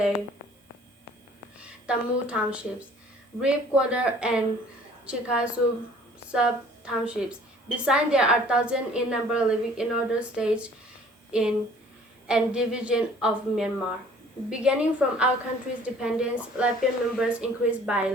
Tamu townships, Reap Quarter, and Chikasu sub-townships. Besides, there are thousands in number living in other states and division of Myanmar. Beginning from our country's independence, Latvian members increased by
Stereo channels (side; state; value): both; normal; correlation 0.53